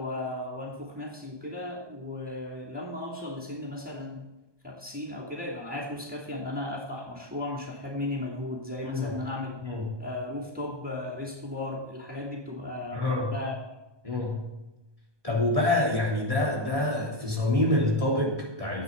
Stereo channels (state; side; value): late; left; 1.2 ms